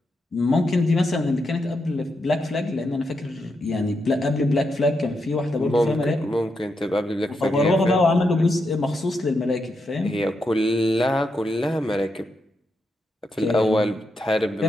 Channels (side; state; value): both; normal; correlation 0.83